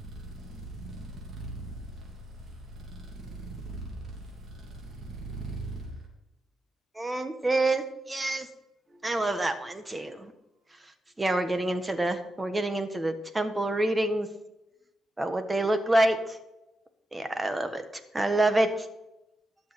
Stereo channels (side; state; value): both; normal; correlation 0.88